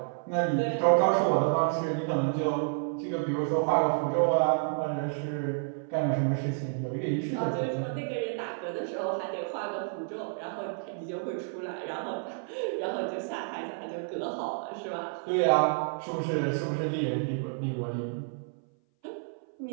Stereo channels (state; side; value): silent; left; 58 dB below the other